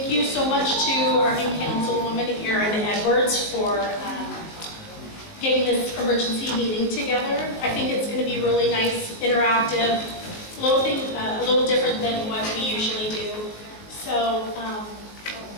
you so much to our new councilwoman, Erin Edwards, for getting this emergency meeting together. I think it's going to be really nice, interactive, a little different than what we usually do. So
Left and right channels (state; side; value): late; right; 19 ms